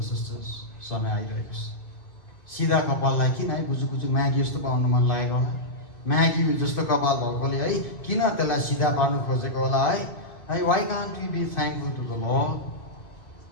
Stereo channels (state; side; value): late; right; 2.0 ms